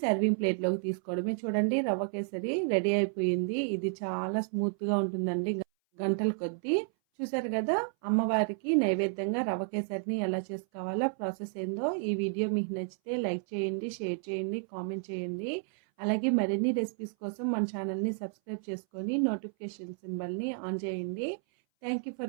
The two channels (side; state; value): left; silent; 57 dB below the other